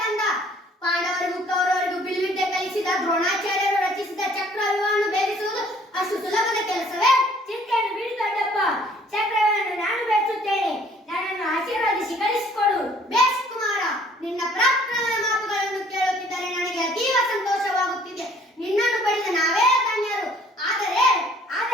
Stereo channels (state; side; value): normal; both; correlation 0.58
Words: ಕಂದ? ಪಾಂಡವರಿಗೂ ಕೌರವರಿಗೂ ಬಿಲ್ವಿದ್ಯೆ ಕಲಿಸಿದ ದ್ರೋಣಾಚಾರ್ಯರು ರಚಿಸಿದ ಚಕ್ರವ್ಯೂಹವನ್ನು ಭೇದಿಸುವುದು ಅಷ್ಟು ಸುಲಭದ ಕೆಲಸವೇ? ಚಿಂತೆಯನ್ನು ಬಿಡಿ ದೊಡ್ಡಪ್ಪ. ಚಕ್ರವನ್ನು ನಾನು ಬೆಳೆಸುತ್ತೇನೆ. ನನ್ನನ್ನು ಆಶೀರ್ವದಿಸಿ ಕಳಿಸಿಕೊಡು. ಬೇಷ್ ಕುಮಾರ, ನಿನ್ನ ಪರಾಕ್ರಮದ ಮಾತುಗಳನ್ನು ಕೇಳುತ್ತಿದ್ದರೆ ನನಗೆ ಅತೀವ ಸಂತೋಷವಾಗುತ್ತಿದೆ. ನಿನ್ನನ್ನು ಪಡೆದ ನಾವೇ ಧನ್ಯರು. ಆದರೆ